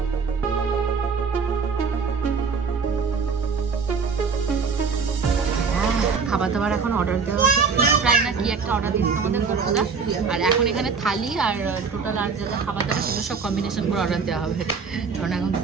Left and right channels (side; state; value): left; quieter; 5.4 dB